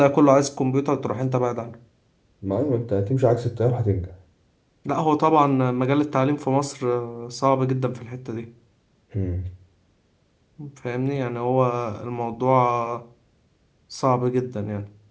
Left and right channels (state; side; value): identical; both; correlation 1.00